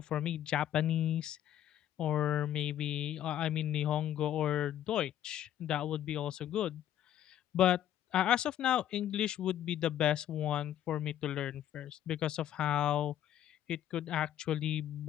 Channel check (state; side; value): quieter; right; 11.5 dB